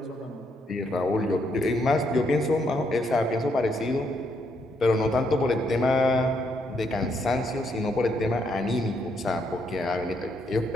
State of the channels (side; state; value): both; normal; correlation 0.75